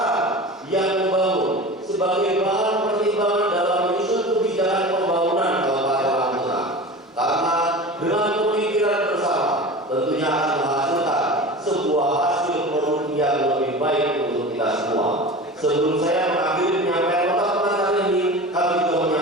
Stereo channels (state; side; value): normal; both; correlation 0.33